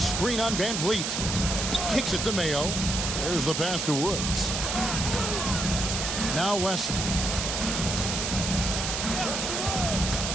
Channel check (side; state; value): right; noise; hiss, 2 dB below the sound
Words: on Van Vliet. Kicks it to Mayo. There's the pass to Woods. Now Wesley.